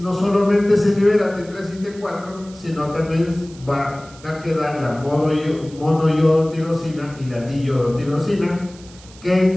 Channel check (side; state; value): right; noise; hiss, 22 dB below the sound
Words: solamente se libera T3 y T4, sino también va a quedar la monoyodotirosina y la diyodotirosina,